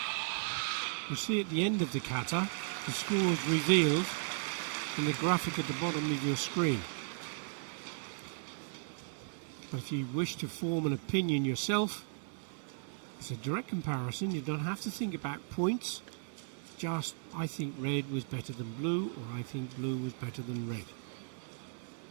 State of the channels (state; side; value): silent; left; digital silence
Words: you see at the end of the kata, the score is revealed in the graphic at the bottom of your screen. But if you wish to form an opinion yourself, it's a direct comparison. You don't have to think about points. Just, I think red was better than blue, or I think blue was better than red.